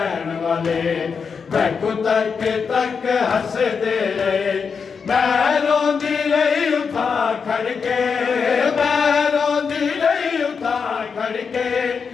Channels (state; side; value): quieter; right; 5.8 dB